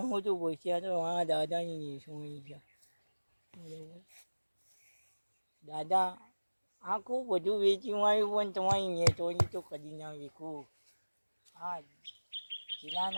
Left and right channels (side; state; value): both; inverted; correlation -1.00